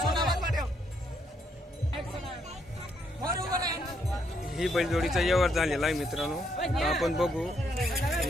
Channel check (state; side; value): normal; both; correlation 0.74